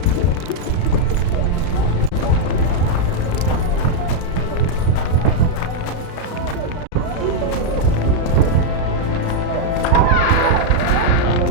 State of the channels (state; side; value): late; right; 33 ms